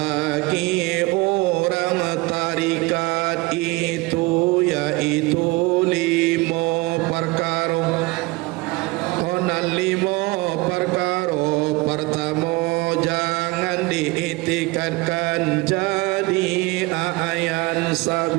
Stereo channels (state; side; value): quieter; left; 23.3 dB